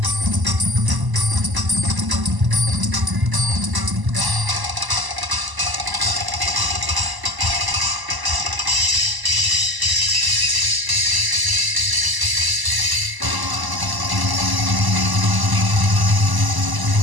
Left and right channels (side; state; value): left; late; 1.0 ms